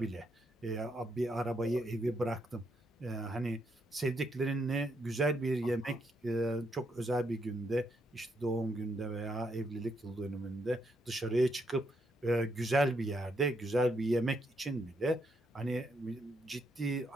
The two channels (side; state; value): both; normal; correlation 0.77